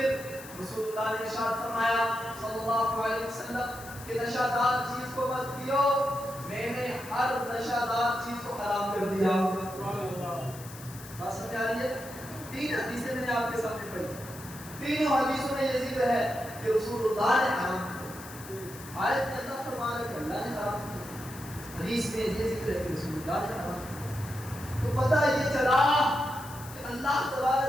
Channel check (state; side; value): noise; left; hiss, 16 dB below the sound